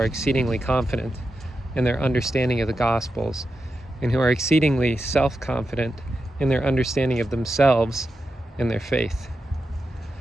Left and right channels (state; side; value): normal; both; correlation 0.89